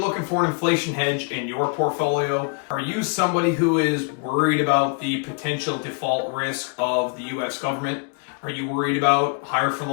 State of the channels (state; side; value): quieter; right; 35.3 dB